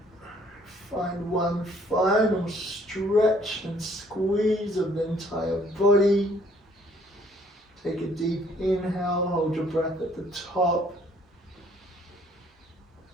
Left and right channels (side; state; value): both; normal; correlation 0.61